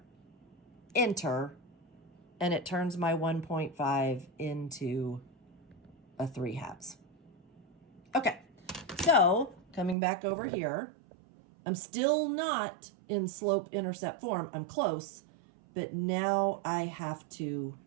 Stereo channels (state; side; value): drops out; left; at 10.0 s